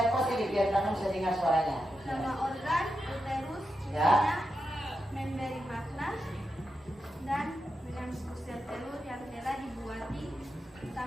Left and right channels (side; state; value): both; normal; correlation 0.87